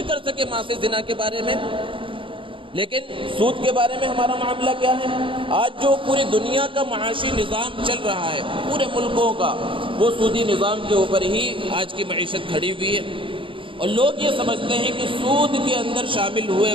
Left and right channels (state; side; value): late; left; 0.25 ms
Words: کر سکے ماں سے زنا کے بارے میں؟ لیکن سود کے بارے میں ہمارا معاملہ کیا ہے؟ آج جو پوری دنیا کا معاشی نظام چل رہا ہے، پورے ملکوں کا، وہ سودی نظام کے اوپر ہی آج کی معیشت کھڑی ہوئی ہے۔ اور لوگ یہ سمجھتے ہیں کہ سود کے اندر شامل ہوئے